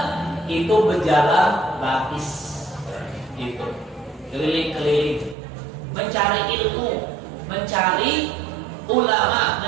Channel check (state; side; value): drops out; left; at 5.4 s